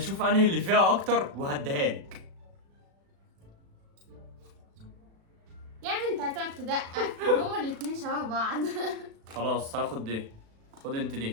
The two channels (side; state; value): left; late; 36 ms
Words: انهي اللي فيها اكتر وهديها لك. يا ابني انت هتقعد تدقق، هما الاتنين شبه بعض. خلاص هاخد دي، خد انت